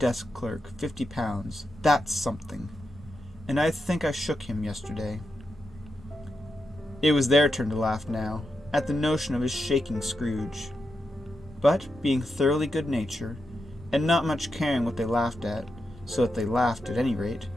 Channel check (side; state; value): both; normal; correlation 0.86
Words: clerk £50, that's something. And I think I shook him yesterday. It was their turn to laugh now, at the notion of his shaking Scrooge. But, being thoroughly good-natured, and not much caring what they laughed at, so that they laughed at any rate,